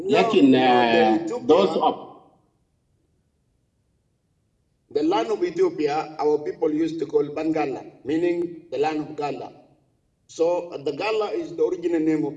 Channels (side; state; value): both; identical; correlation 1.00